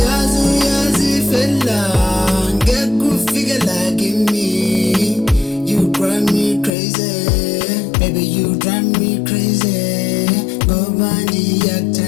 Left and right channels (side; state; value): right; drops out; at 6.7 s